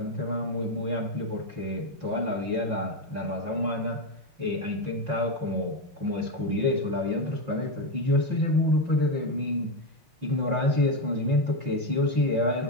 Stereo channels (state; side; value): late; left; 5.6 ms